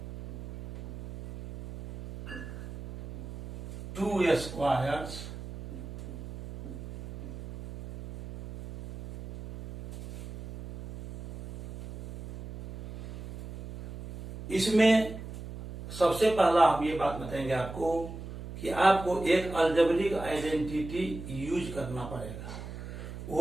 2 squares इसमें सबसे पहला हम ये बात बताएंगे आपको कि आपको एक अलजेब्रिक आइडेंटिटी यूज करना पड़ेगा।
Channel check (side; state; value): right; noise; hum, 11 dB below the sound